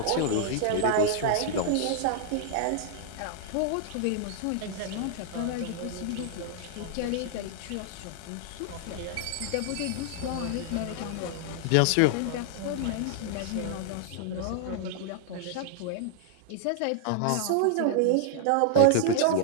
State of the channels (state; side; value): different; both; correlation -0.01